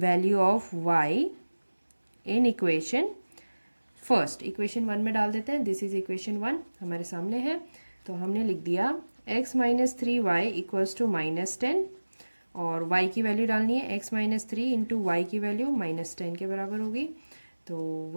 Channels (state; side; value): inverted; both; correlation -1.00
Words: of y in equation first. Equation 1 में डाल देते हैं। दिस इज इक्वेशन 1 हमारे सामने है। तो हमने लिख दिया x minus 3y equals to minus 10, और y की वैल्यू डालनी है x माइनस 3 इंटू वाई की वैल्यू माइनस 10 के बराबर होगी। तो